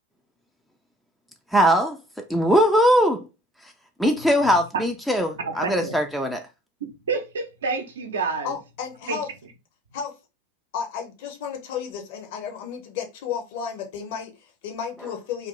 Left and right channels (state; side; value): normal; both; correlation 0.58